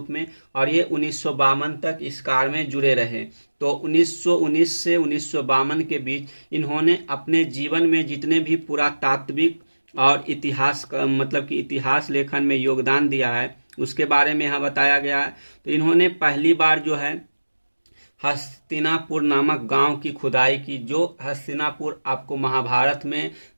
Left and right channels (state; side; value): inverted; both; correlation -1.00